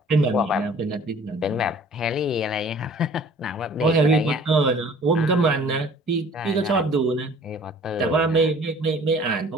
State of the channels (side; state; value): both; normal; correlation 0.51